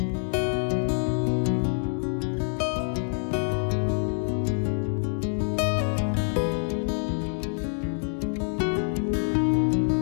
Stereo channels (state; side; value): silent; right; digital silence